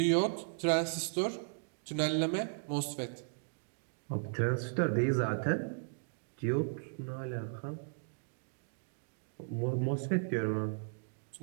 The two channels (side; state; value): left; silent; digital silence